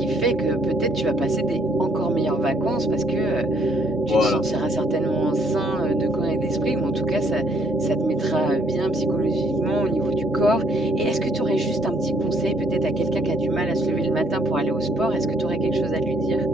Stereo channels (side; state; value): both; normal; correlation 0.66